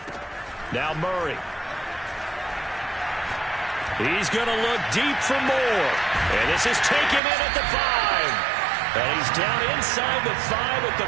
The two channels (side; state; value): left; drops out; at 7.2 s